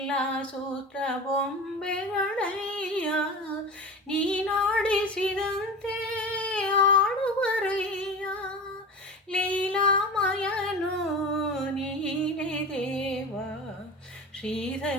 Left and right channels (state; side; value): normal; both; correlation 0.30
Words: ಸೂತ್ರ ಬೊಂಬೆಗಳಯ್ಯ ನೀನಾಡಿಸಿದಂತೆ ಆಡುವರಯ್ಯ ಲೀಲಾಮಯನು ನೀನೇ ದೇವ